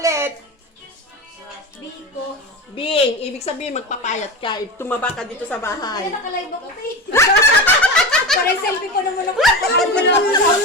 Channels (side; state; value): both; normal; correlation 0.25